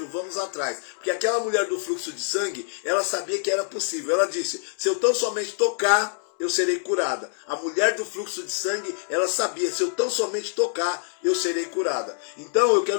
vamos atrás. Porque aquela mulher do fluxo de sangue, ela sabia que era possível. Ela disse, se eu tão somente tocar, eu serei curada. A mulher do fluxo de sangue, ela sabia, se eu tão somente tocar, eu serei curada. Então eu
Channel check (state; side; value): silent; right; 62 dB below the other